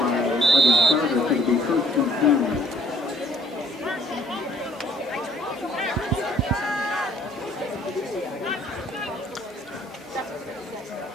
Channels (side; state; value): both; normal; correlation 0.58